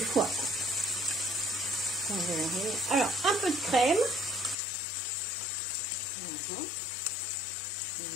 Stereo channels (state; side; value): drops out; right; at 4.5 s